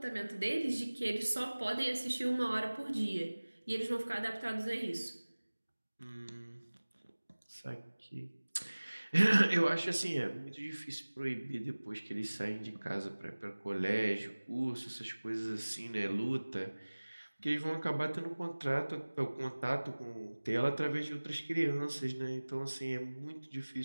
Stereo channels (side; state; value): both; inverted; correlation -1.00